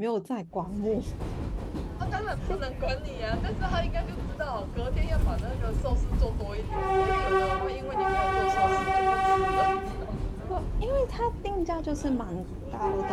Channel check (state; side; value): identical; both; correlation 1.00